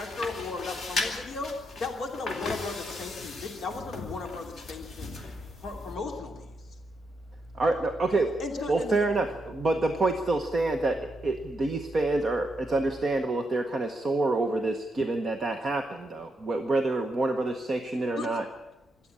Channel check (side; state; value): both; normal; correlation 0.81